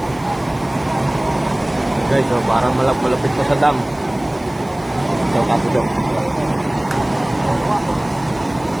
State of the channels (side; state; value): right; noise; hiss, 26 dB below the sound